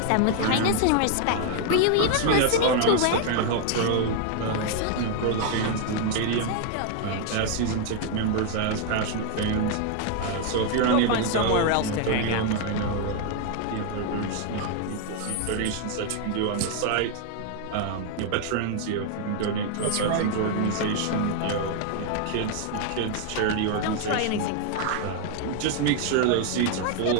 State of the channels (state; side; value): different; both; correlation 0.00